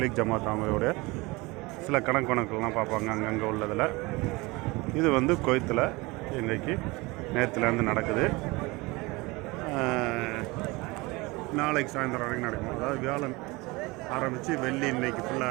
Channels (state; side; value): quieter; left; 23.7 dB